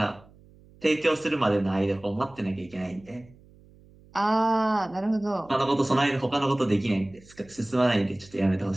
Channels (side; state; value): right; noise; hum, 26 dB below the sound